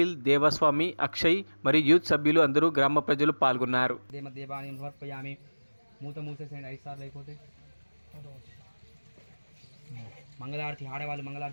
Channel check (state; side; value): inverted; both; correlation -1.00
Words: దేవస్వామి, అక్షయ్ మరియు యూత్ సభ్యులు అందరూ గ్రామ ప్రజలు పాల్గొన్నారు. మూత మూసేసేయండి 5 సార్లు అయిపోతే. మంగళారతి ఆడేవాళ్ళు